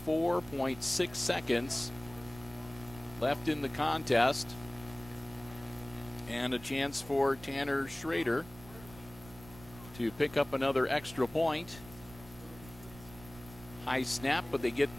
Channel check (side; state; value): right; noise; rumble, 18 dB below the sound